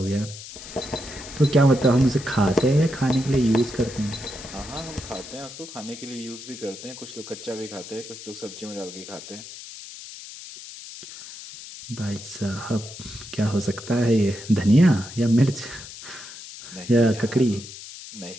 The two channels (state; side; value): noise; left; hiss, 13 dB below the sound